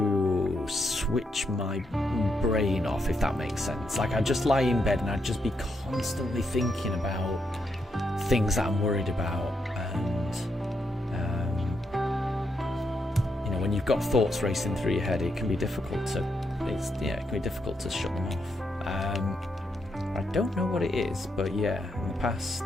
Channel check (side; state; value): both; normal; correlation 0.80